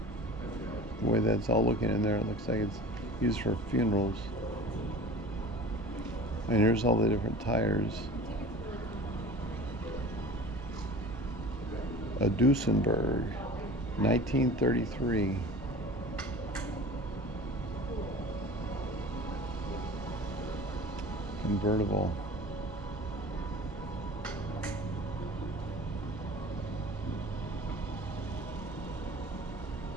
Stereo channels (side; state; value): both; normal; correlation 0.39